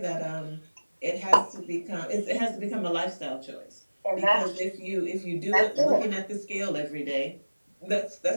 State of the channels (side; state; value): both; inverted; correlation -1.00